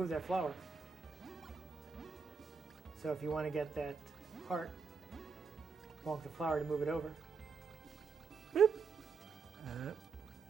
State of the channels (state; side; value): quieter; left; 5.2 dB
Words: that flower. So if you want to get that heart, bonk the flower to move it over. Boop.